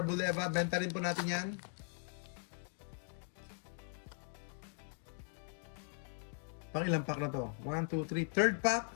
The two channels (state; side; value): silent; right; 51 dB below the other